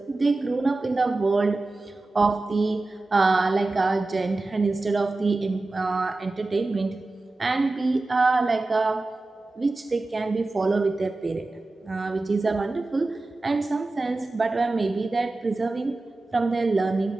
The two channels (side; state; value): left; quieter; 3.2 dB